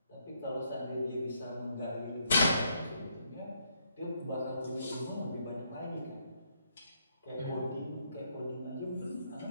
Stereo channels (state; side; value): inverted; both; correlation -0.74